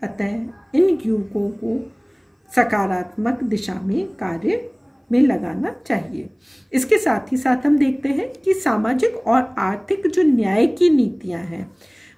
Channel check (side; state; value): both; identical; correlation 1.00